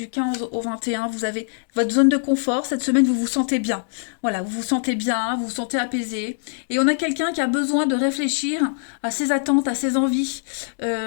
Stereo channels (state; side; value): silent; right; digital silence